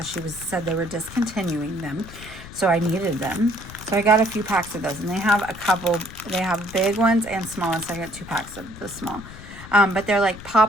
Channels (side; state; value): left; noise; rumble, 15 dB below the sound